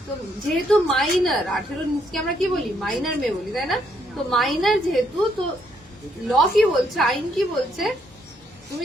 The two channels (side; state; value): both; normal; correlation 0.73